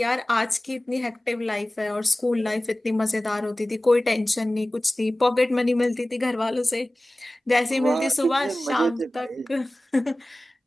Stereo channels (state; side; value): normal; both; correlation 0.97